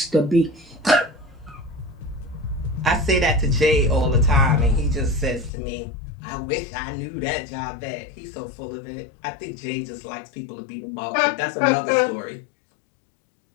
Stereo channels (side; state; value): right; drops out; at 5.5 s